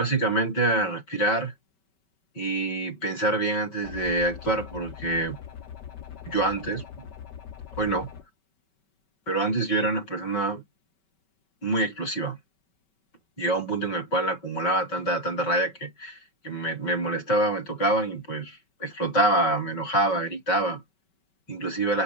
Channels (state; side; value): late; right; 5.2 ms